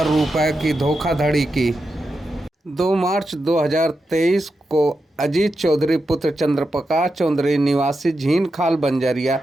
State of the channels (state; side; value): normal; both; correlation 0.88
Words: रुपये की धोखाधड़ी की। 2 मार्च 2023 को अजीत चौधरी पुत्र चंद्रप्रकाश चौधरी निवासी झीनखाल बंजरिया